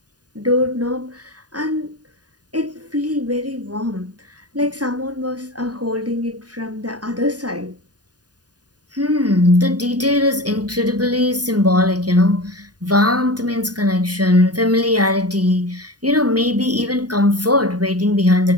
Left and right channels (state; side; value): late; left; 0.68 ms